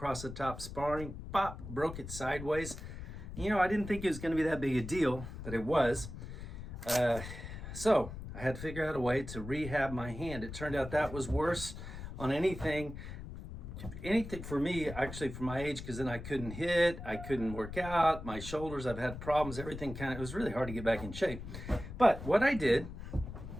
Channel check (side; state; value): left; noise; rumble, 10 dB below the sound